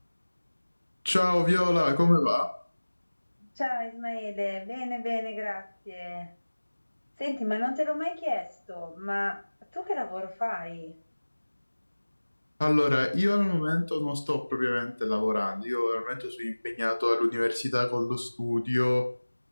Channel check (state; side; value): inverted; both; correlation -1.00